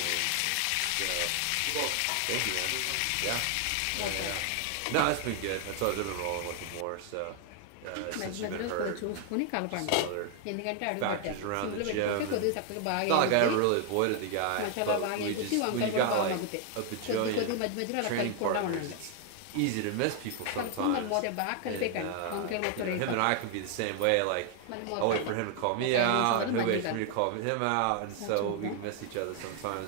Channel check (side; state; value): both; different; correlation 0.00